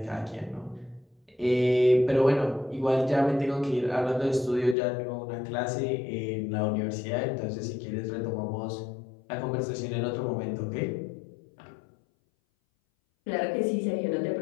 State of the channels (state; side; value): drops out; right; at 4.8 s